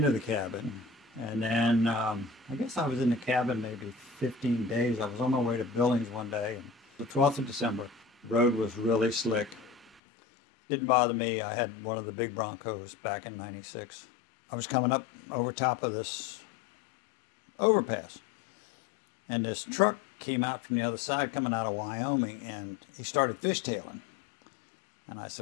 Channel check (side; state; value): right; drops out; at 10.0 s